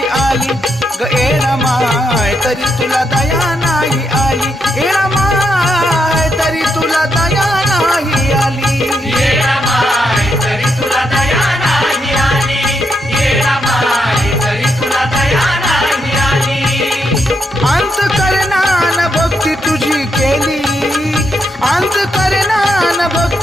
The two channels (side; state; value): both; normal; correlation 0.80